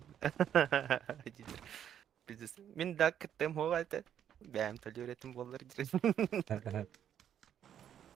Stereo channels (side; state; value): left; quieter; 9.6 dB